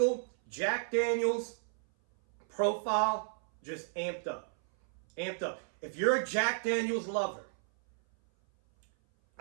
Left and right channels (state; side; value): silent; left; 56 dB below the other